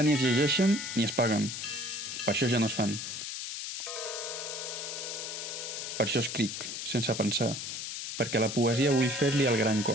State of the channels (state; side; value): noise; left; hiss, 6 dB below the sound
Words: ni es llegeixen ni es paguen. Per això ja no es fan. Per això escric, sense pensar, perquè la poesia vull fer-li el gran